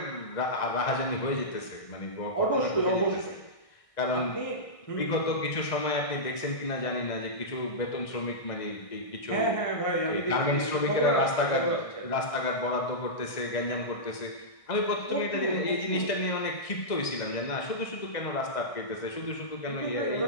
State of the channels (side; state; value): right; late; 1.6 ms